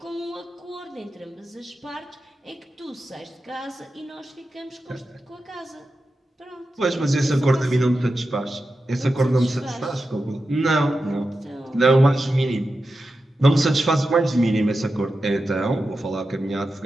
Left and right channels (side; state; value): both; normal; correlation 0.91